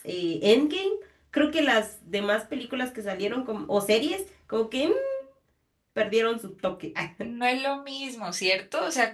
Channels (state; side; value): identical; both; correlation 1.00